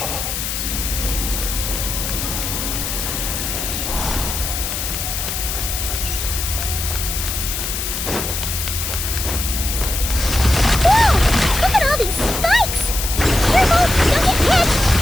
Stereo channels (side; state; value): left; noise; hiss, 3 dB below the sound